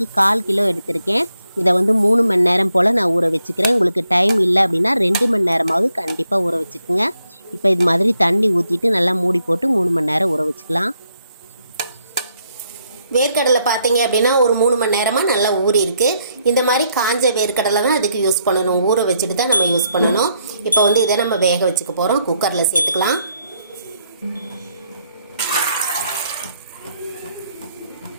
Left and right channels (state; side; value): inverted; both; correlation -0.75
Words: 1/4 கிலோ எடுத்திருக்கேன். இதை 3 மணி நேரம் போல் நான் ஊற வச்சுக்கிறேன். உங்களுக்கு டைம் இல்லை அப்படின்னா 2 மணி நேரமாவது கண்டிப்பாக ஊற வச்சுக்கோங்க. இப்போ இது மாதிரி தண்ணி ஊற்றிட்டு நல்லா மூடி போட்டு 3 மணி நேரம் ஊற வச்சுக்கலாம். வேர்க்கடலை பார்த்தீங்க அப்படின்னா ஒரு 3 மணி நேரமாக நல்லா ஊறி இருக்கு. இந்த மாதிரி காஞ்ச வேர்க்கடலை தான் அதுக்கு யூஸ் பண்ணணும். ஊற வச்சுட்டு தான் நம்ம யூஸ் பண்ணணும். இப்போ இதை நம்ம வேக வச்சுக்க போகிறோம். குக்கரில் சேர்த்துக்கலாம்.